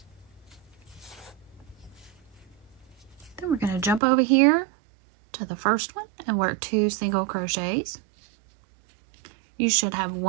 Then we're going to jump over here to the first one and work 2 single crochets. You should have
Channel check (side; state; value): left; drops out; at 4.0 s